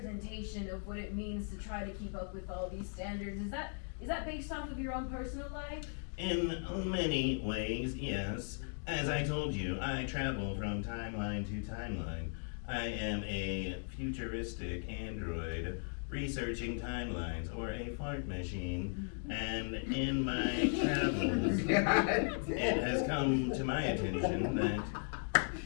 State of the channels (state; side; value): silent; right; 53 dB below the other